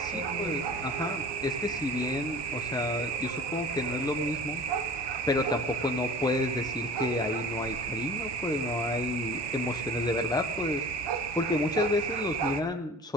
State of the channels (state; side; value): normal; both; correlation 0.42